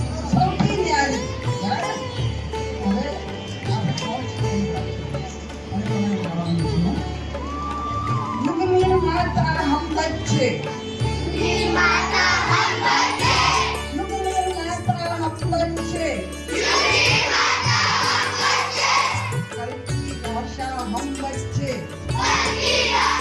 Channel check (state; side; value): identical; both; correlation 1.00